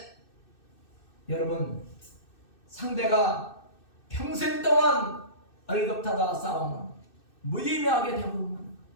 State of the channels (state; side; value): late; right; 2.6 ms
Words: 여러분, 상대가 평생 동안 얼겁하다 싸우면 무의미하게 되고,